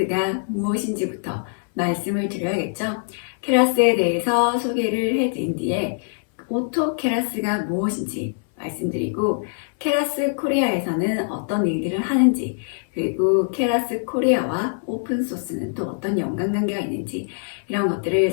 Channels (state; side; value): silent; right; 61 dB below the other